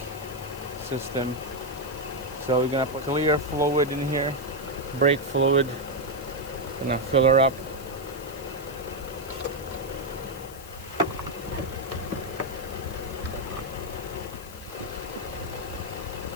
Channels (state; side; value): noise; left; hiss, 17 dB below the sound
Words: system. So we're gonna put clear fluid in here, brake fluid. Gonna fill her up.